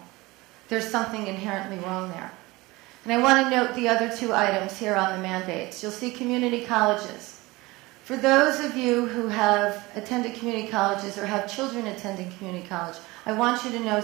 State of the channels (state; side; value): quieter; left; 21.6 dB